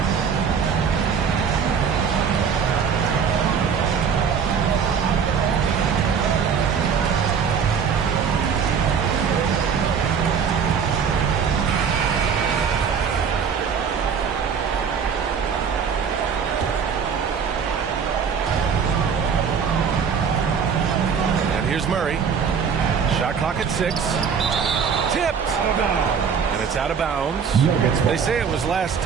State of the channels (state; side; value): quieter; left; 6.6 dB